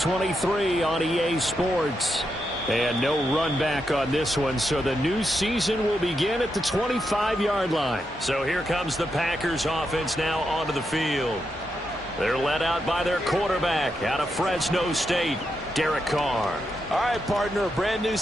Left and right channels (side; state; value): both; normal; correlation 0.84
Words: on EA Sports. And no run back on this one, so the new season will begin at the 25-yard line. So here comes the Packers offense now onto the field. They're led out by their quarterback out of Fresno State, Derek Carr. All right, partner, a brand new